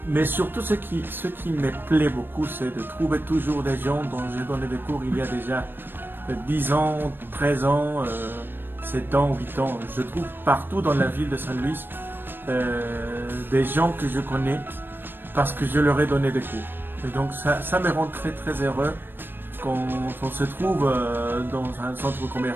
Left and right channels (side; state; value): left; late; 0.097 ms